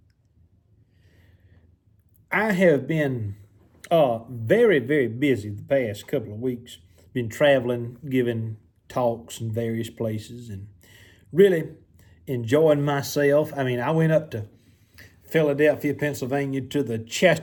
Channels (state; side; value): identical; both; correlation 1.00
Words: I have been very, very busy the past couple of weeks. Been traveling, giving talks in various places, and really enjoying myself. I went up to Philadelphia, Pennsylvania to the